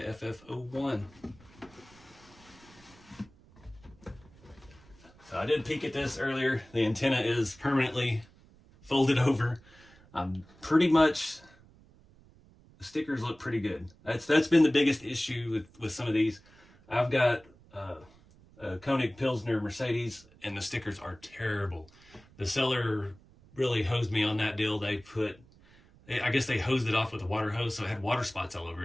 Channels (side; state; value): right; noise; rumble, 26 dB below the sound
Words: FF01. So I did peek at this earlier. The antenna is permanently folded over. Pretty much, the stickers look pretty good. That's been the biggest issue with some of these. I've got a Koenig Pilsner Mercedes, and the stickers are terrible. The seller really hosed me on that deal. I guess they hosed it off with a water hose, so it had water spots all over